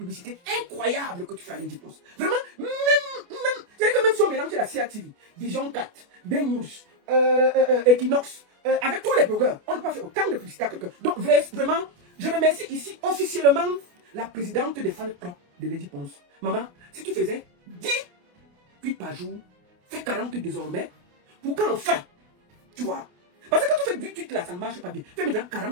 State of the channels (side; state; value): left; late; 28 ms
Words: incroyable que tu fais à Lady Ponce. Vraiment, c'est-à-dire que même si on mélange la CIA TV, Vision 4, Ben News, Equinox, avec tous les blogueurs, on ne peut pas faire autant de publicité à quelqu'un. Donc vraiment, je remercie ici officiellement la présidente des fan clubs de Lady Ponce. Maman, si tu faisais 10 tweets par jour, fais 40 désormais, pour qu'enfin, tu vois. Parce que quand tu fais 10 tweets là, ça ne marche pas bien. Fais maintenant